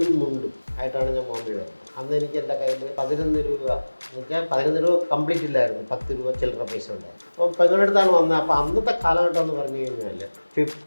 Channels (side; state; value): both; inverted; correlation -1.00